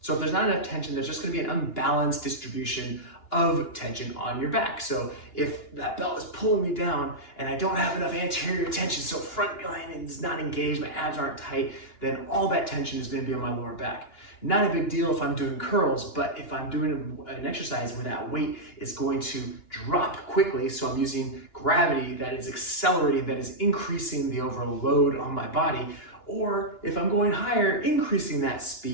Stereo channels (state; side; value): late; right; 2.9 ms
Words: So if there's not enough tension, there's just going to be an unbalanced distribution of tension on your back. So if that belt is pulling me down and I don't have enough anterior tension, so front line is not engaged, my abs aren't tight, then all that tension is going to be on my lower back. Not a big deal if I'm doing curls, but if I'm doing an exercise where that weight is going to drop quickly, so I'm using gravity that is accelerating, that is increasing the overall load on my body, or if I'm going higher, increasing that